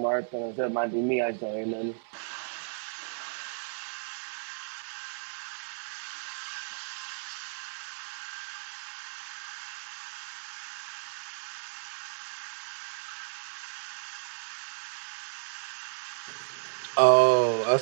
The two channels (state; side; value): silent; left; digital silence